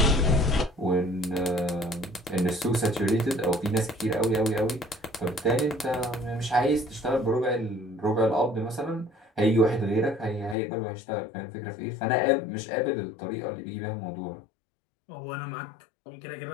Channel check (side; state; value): right; drops out; at 10.6 s